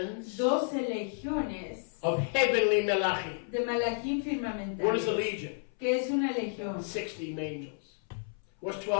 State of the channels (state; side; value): silent; right; 57 dB below the other